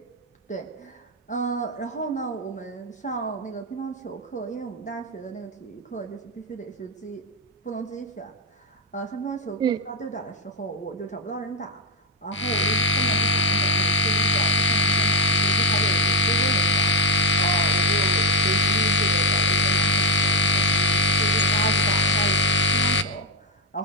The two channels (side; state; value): both; normal; correlation 0.05